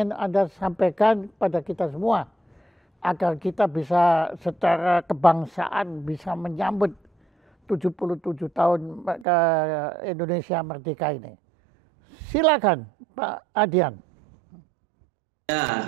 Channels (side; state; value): left; drops out; at 9.2 s